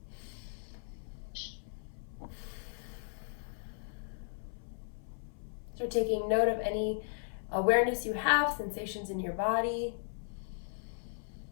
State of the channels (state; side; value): silent; right; 54 dB below the other